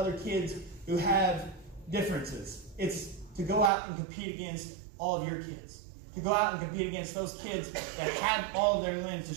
kids who have differences. It's to go out and compete against all of your kids. To go out and compete against those kids that have all of their limbs, to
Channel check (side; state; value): left; drops out; at 3.7 s